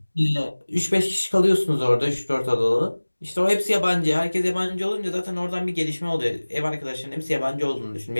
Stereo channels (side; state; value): both; inverted; correlation -1.00